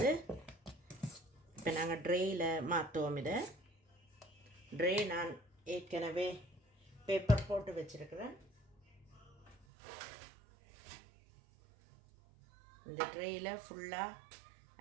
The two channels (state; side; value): drops out; left; at 9.7 s